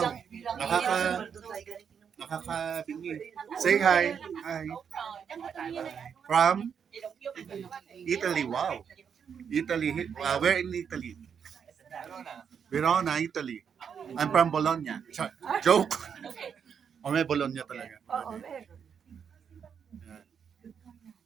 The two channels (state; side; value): quieter; left; 7.3 dB